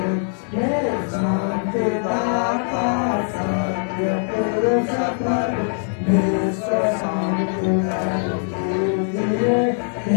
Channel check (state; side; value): silent; right; 65 dB below the other